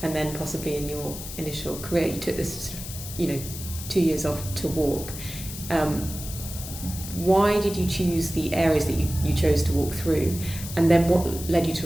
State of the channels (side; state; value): left; noise; hiss, 10 dB below the sound